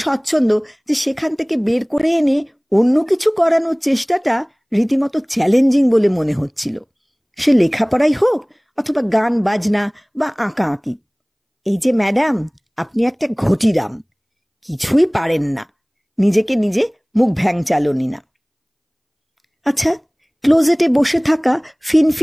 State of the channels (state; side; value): identical; both; correlation 1.00